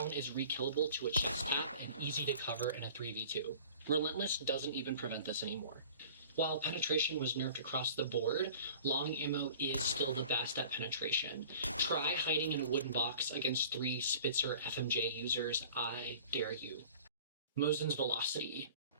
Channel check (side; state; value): both; inverted; correlation -0.45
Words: is rekillable to a chest tap and easy to cover in a 3v2. Relentless doesn't even prevent this anymore. While penetration was nerfed across the board, long ammo is still the best at penetration. Try hiding in a wooden box against 3 Spitzer FMJ users, I dare you. Mosin's velocity.